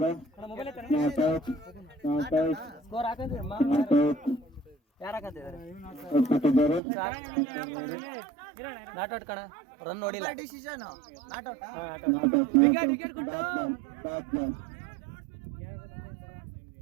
ನಾಟೌಟ್ ಕಣ, ರನ್ ನೋಡಿಲ್ಲ.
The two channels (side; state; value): left; drops out; at 6.8 s